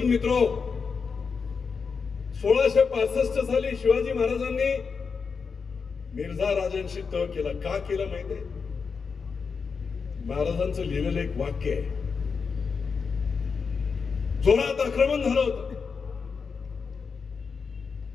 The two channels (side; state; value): right; quieter; 5.4 dB